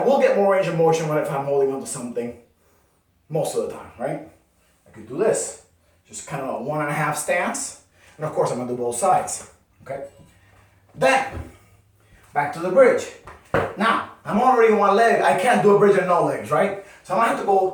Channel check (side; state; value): both; identical; correlation 1.00